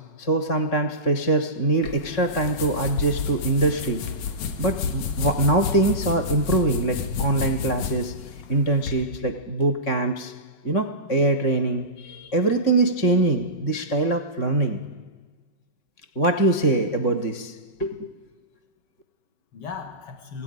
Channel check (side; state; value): right; late; 5.4 ms